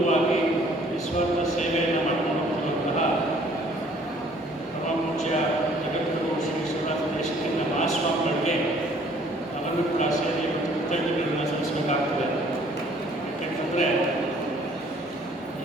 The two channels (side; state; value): both; normal; correlation 0.58